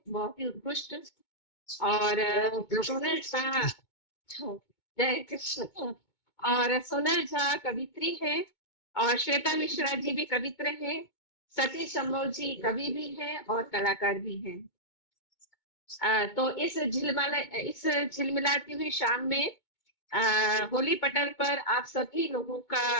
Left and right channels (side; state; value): right; late; 2.2 ms